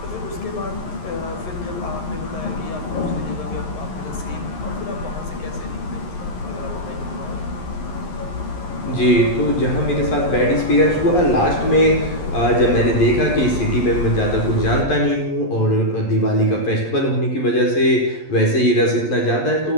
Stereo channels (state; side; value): late; right; 11 ms